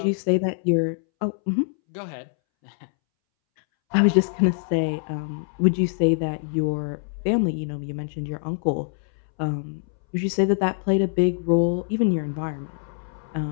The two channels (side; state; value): right; silent; 62 dB below the other